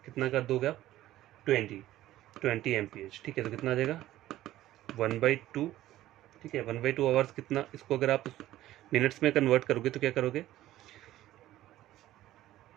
कितना कर दोगे आप, 20 mph, ठीक है। तो कितना आ जाएगा, 1/2, ठीक है। 1/2 आवर्स कितना, इसको अगर आप मिनट्स में कन्वर्ट करोगे तो क्या करोगे,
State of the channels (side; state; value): left; quieter; 14.6 dB